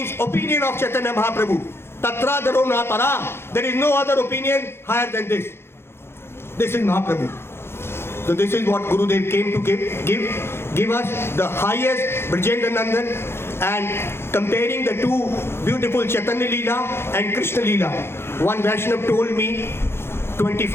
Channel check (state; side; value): late; right; 0.12 ms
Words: opinion of Chaitanya Mahaprabhu. Tatra Daro Natara. There is no other opinion higher than this. This is Mahaprabhu. So this is what Gurudev came to give us the highest Brajendra Nandan, and comparing the two beautiful Chaitanya Leela and Krishna Leela. One Vaishnav told me